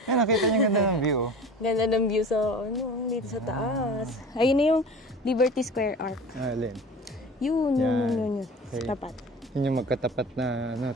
Yan, nakita niyo ganda ng view. Ganda ng view sa, dito sa taas. Ayun na yung Liberty Square Arc. Alin? Yun. Okay. Tapat. Yun yung magkatapat na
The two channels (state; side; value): normal; both; correlation 0.38